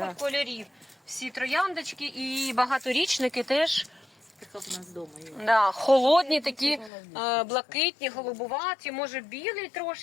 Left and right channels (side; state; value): right; drops out; at 6.9 s